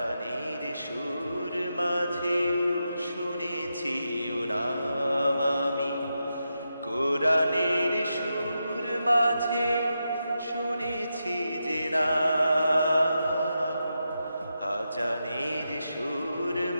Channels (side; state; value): both; inverted; correlation -0.87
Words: সুর মাঝেও শুনেছি ও নাম। আমি কোরআনের সুর মাঝে শুনেছি যে না, আজানের সুর